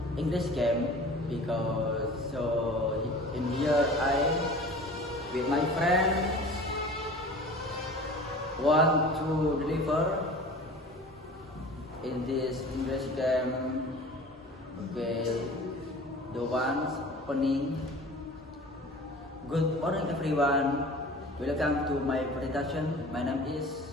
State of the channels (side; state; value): both; normal; correlation 0.41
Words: English game because in here I with my friends want to deliver in this English game. Okay, the ones opening. Good morning everyone. Welcome to my presentation. My name is